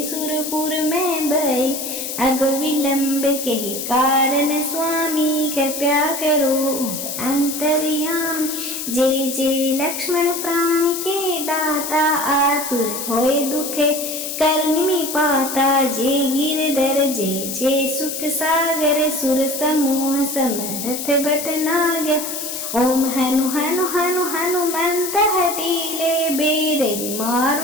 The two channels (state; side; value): noise; left; hiss, 5 dB below the sound